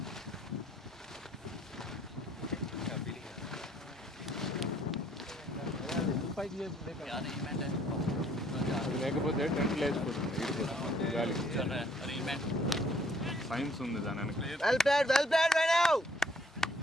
లేకపోతే టెంట్ లేచిపోతుంది గాలికి. సైన్స్ ఉంది దాని వెనక. Well played right now.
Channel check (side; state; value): both; normal; correlation 0.63